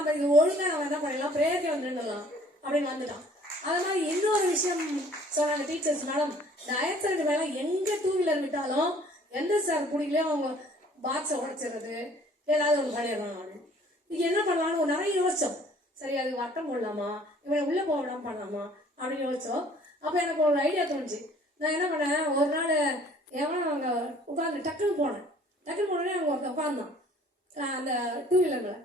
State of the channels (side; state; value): both; normal; correlation 0.55